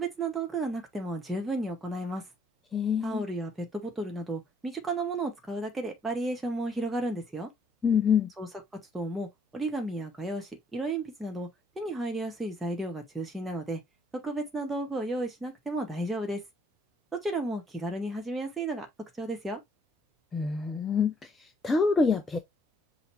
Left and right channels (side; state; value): both; normal; correlation 0.66